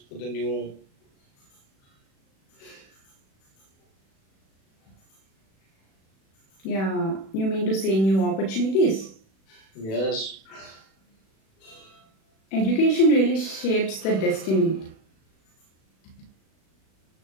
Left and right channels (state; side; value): late; right; 36 ms